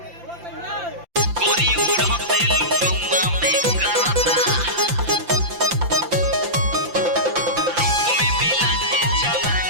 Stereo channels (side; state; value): left; late; 5.8 ms